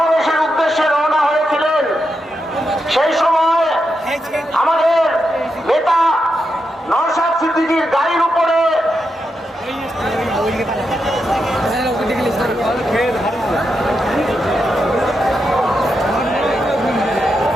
উদ্দেশ্যে রওনা হয়েছিলেন। সেই সময় আমাদের নেতা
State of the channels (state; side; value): normal; both; correlation 0.85